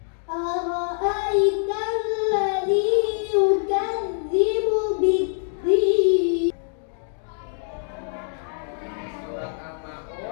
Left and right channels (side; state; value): right; silent; digital silence